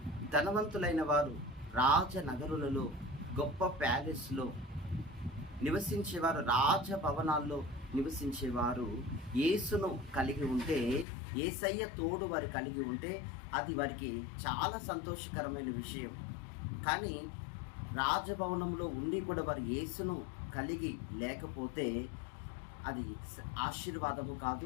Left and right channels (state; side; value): drops out; right; at 11.1 s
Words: ధనవంతులైన వారు రాజనగరులలో, గొప్ప ప్యాలెస్లో నివసించేవారు, రాజభవనాల్లో నివసించేవారు యేసును కలిగి ఉంటే, యేసయ్య తోడు వారు కలిగి ఉంటే అది వారికి చాలా సంతోషకరమైన విషయం. కానీ రాజభవనంలో ఉండి కూడా వారు యేసును కలిగి లేకపోతే అది ఆశీర్వాదము